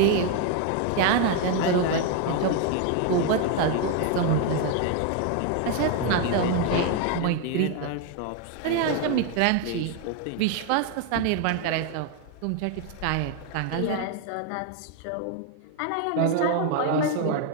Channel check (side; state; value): both; different; correlation 0.01